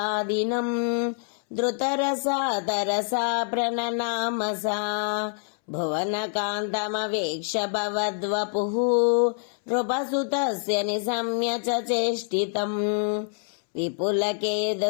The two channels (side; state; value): right; silent; 61 dB below the other